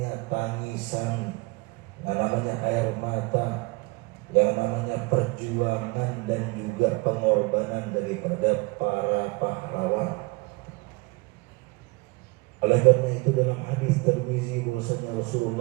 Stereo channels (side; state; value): left; quieter; 25.9 dB